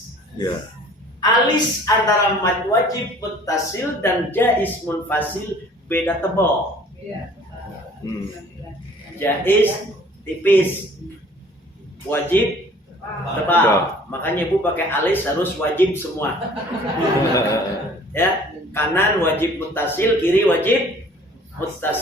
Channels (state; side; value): normal; both; correlation 0.52